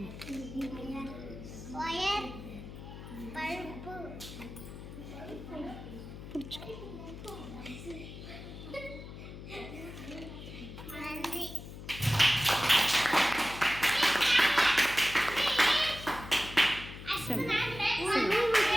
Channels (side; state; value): left; noise; hum, 12 dB below the sound